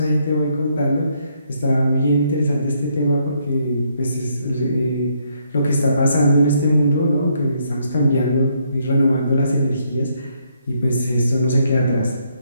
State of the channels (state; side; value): inverted; both; correlation -0.72